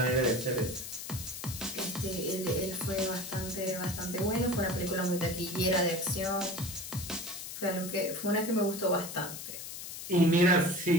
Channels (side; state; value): left; noise; hiss, 9 dB below the sound